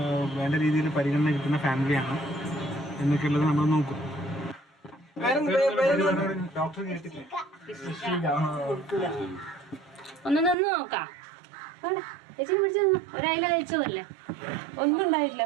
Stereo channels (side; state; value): left; drops out; at 10.6 s